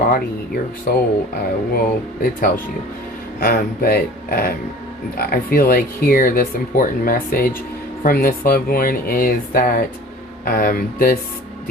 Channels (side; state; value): both; normal; correlation 0.43